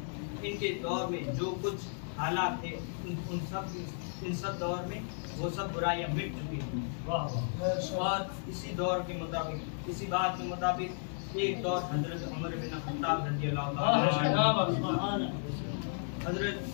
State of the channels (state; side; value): silent; right; digital silence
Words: इनके दौर में जो कुछ हालात थे इन सब दौर में वो सब बुराइयां मिट चुकी थी। और इसी दौर के मुताबिक इसी बात के मुताबिक एक दौर हजरत उमर बिन खत्ताब रज़ियल्लाहु